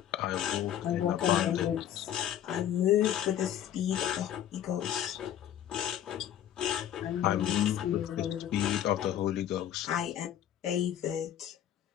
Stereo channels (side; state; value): right; quieter; 10.8 dB